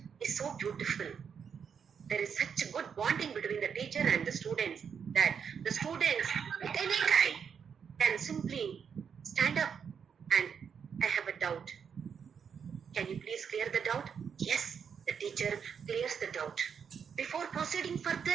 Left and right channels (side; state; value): left; quieter; 7.0 dB